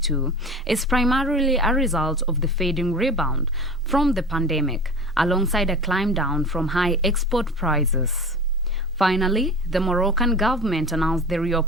is primarily a result of the fading rebound from the pandemic, alongside a climb down from high export prices. Finally, the Moroccan government announced the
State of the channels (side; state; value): both; normal; correlation 0.35